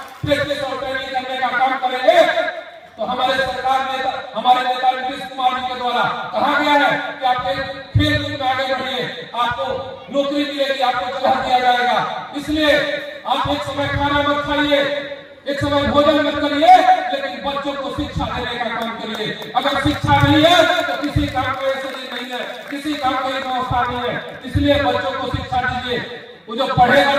प्रैक्टिस और ट्रेनिंग करने का काम करेंगे, तो हमारे सरकार नेता, हमारे नेता नीतीश कुमार जी के द्वारा कहा गया है कि आप खेल कूद में आगे बढ़िए, आपको नौकरी मिलेगी, आपको जगह दिया जाएगा। इसलिए आप एक समय खाना मत खाइए, एक समय भोजन मत करिए, लेकिन बच्चों को शिक्षा देने का काम करिए। अगर शिक्षा नहीं है तो किसी काम को ऐसे नहीं है, किसी काम की व्यवस्था नहीं है। इसलिए बच्चों को शिक्षा दीजिए, वो जो पढ़ेगा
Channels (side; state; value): both; identical; correlation 1.00